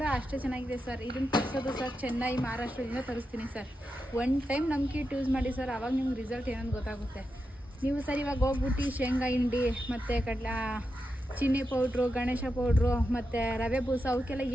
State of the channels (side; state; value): both; normal; correlation 0.88